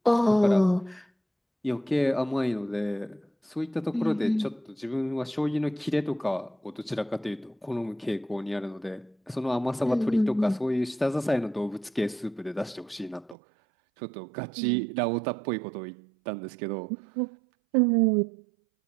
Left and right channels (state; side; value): drops out; left; at 13.4 s